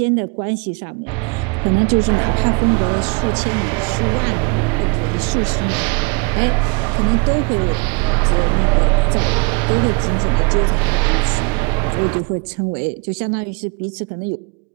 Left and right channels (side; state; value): left; quieter; 31.4 dB